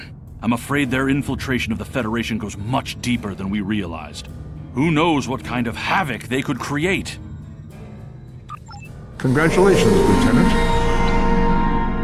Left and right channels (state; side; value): identical; both; correlation 1.00